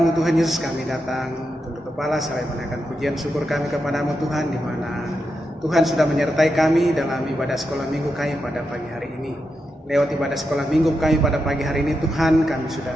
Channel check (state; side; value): normal; both; correlation 0.86